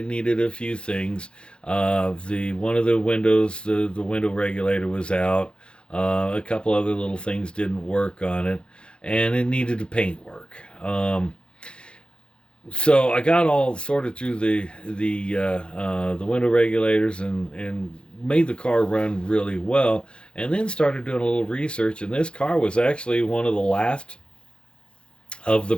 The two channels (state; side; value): late; right; 0.055 ms